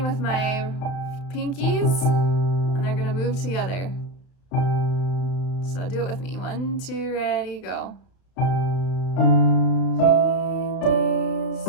with my pinkies, and they're going to move together. So do it with me. 1, 2, ready, go. And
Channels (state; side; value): late; right; 32 ms